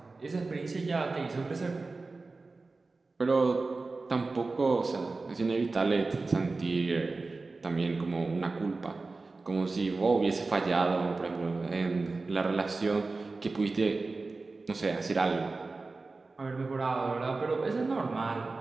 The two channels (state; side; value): quieter; left; 3.7 dB